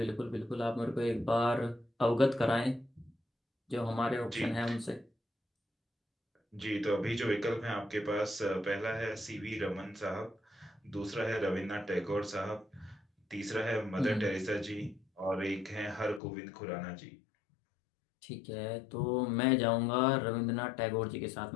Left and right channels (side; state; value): right; drops out; at 16.2 s